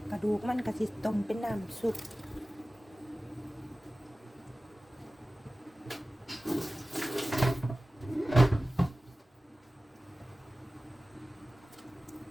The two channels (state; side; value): normal; both; correlation 0.96